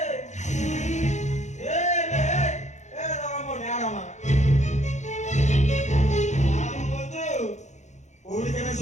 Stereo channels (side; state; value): right; late; 0.34 ms